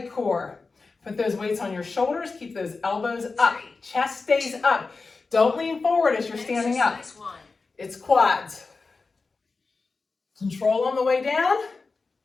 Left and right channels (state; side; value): quieter; right; 4.1 dB